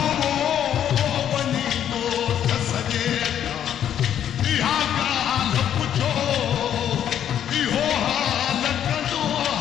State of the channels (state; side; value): quieter; right; 9.9 dB